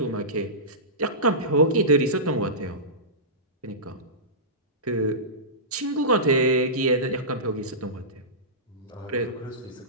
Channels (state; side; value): normal; both; correlation -0.19